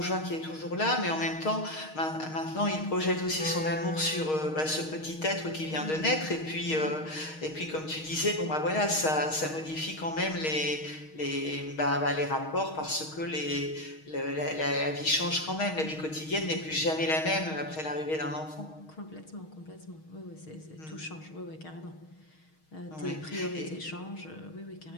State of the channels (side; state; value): right; late; 6.4 ms